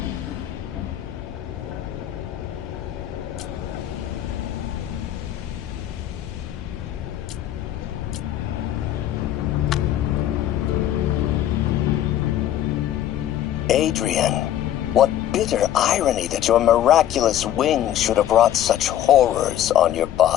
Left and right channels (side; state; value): right; quieter; 11.8 dB